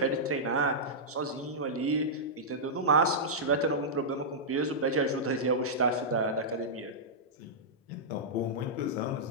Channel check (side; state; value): both; normal; correlation -0.11